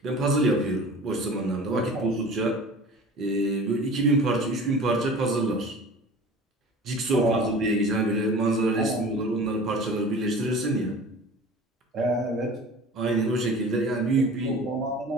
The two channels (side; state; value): both; normal; correlation 0.40